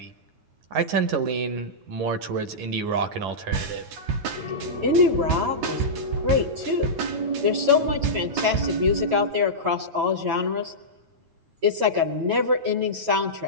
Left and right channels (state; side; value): late; left; 9.4 ms